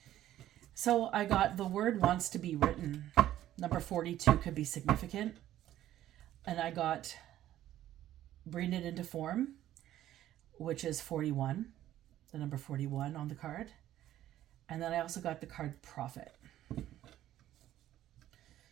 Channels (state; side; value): quieter; left; 12.9 dB